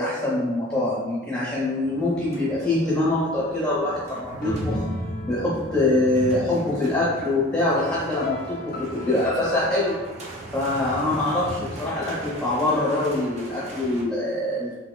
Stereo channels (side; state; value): both; normal; correlation 0.41